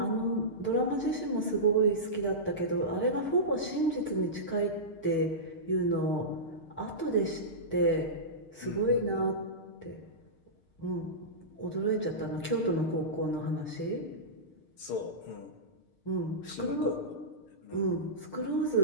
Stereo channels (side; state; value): right; late; 6.5 ms